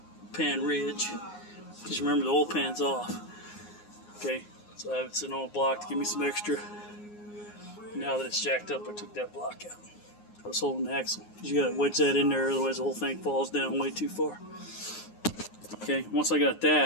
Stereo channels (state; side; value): late; right; 9.6 ms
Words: pan ridge. Just remember the oil pan's off. Okay, so I have it sitting on a block to give me some extra. Now that it's jacked up, I took that block out. I was holding the axle. You got to wedge that in there, otherwise the whole thing falls down way too far. Okay, once I got